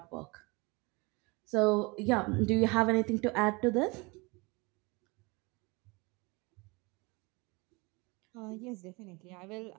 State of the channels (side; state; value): left; quieter; 26.7 dB